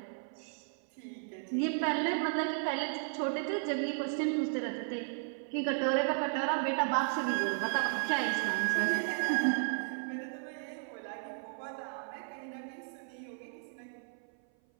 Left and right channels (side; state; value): left; silent; 55 dB below the other